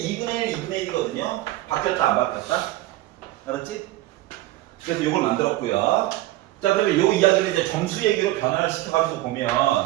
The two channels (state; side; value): quieter; left; 16.6 dB